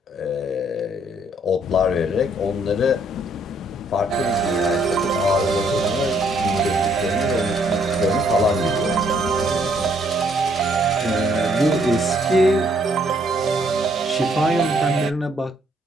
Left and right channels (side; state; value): both; normal; correlation 0.67